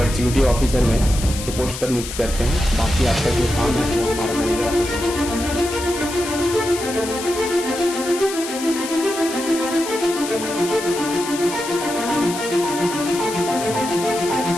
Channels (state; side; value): noise; left; hiss, 9 dB below the sound